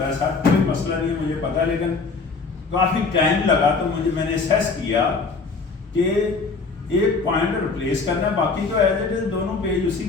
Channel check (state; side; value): quieter; right; 4.4 dB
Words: ہے سر، کوئی مسئلہ نہیں ہے، مجھے پتا ہے، لیکن کافی ٹائم لگا. تو میں نے اسیس کیا کہ ایک پوائنٹ ریپلیس کرنا ہے، باقی تو ایز اٹ از دونوں پیج اسی